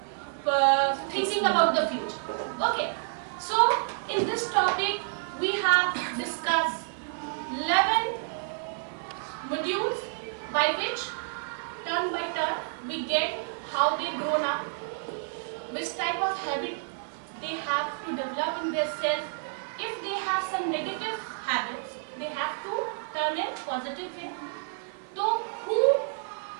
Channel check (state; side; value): silent; left; 58 dB below the other